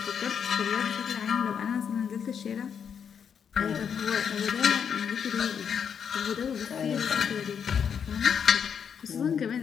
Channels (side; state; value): right; quieter; 7.4 dB